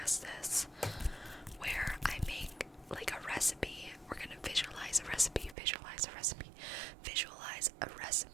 this, where I make like a recipe. We're gonna visualize a recipe, visualize a recipe, visualize a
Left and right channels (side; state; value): left; drops out; at 5.6 s